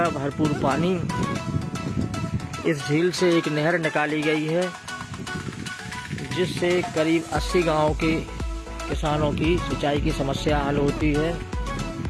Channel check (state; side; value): identical; both; correlation 1.00